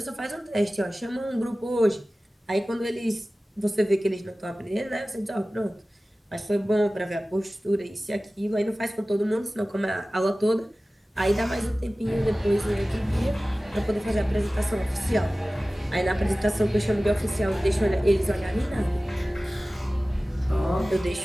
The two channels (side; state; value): both; normal; correlation 0.97